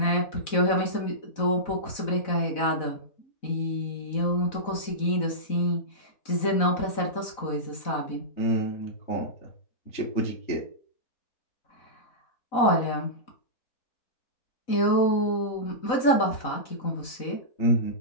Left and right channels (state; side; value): late; right; 4.0 ms